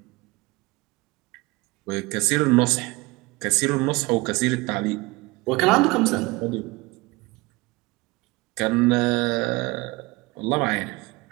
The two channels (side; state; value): left; quieter; 23.3 dB